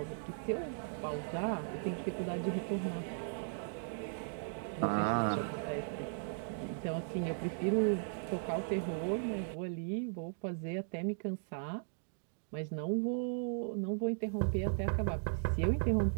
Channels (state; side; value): silent; left; digital silence